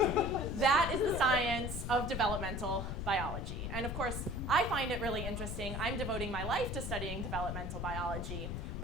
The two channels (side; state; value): left; noise; rumble, 4 dB below the sound